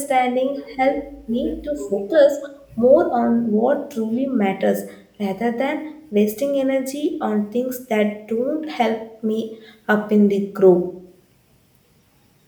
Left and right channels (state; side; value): identical; both; correlation 1.00